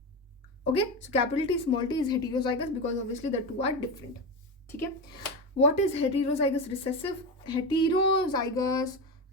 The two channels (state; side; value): normal; both; correlation 0.18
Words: Okay, so capital T small t is heterozygous because obviously the two are different. Okay, what is heterozygous recessive? Heterozygous